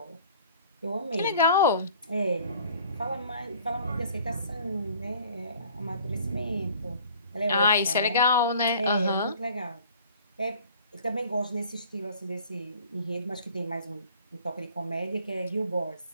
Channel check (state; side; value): inverted; both; correlation -0.50